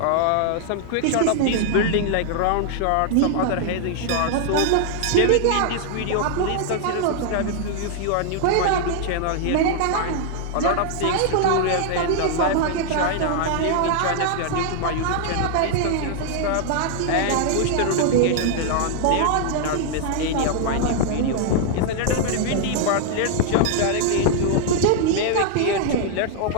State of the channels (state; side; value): different; both; correlation 0.00